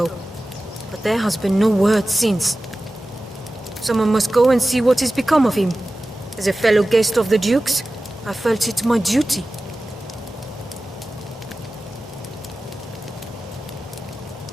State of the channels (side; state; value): both; normal; correlation 0.96